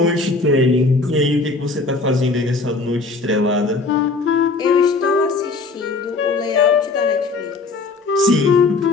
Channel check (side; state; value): right; quieter; 3.8 dB